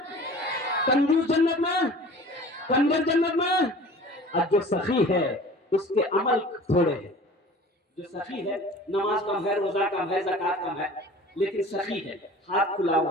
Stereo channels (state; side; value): normal; both; correlation 0.43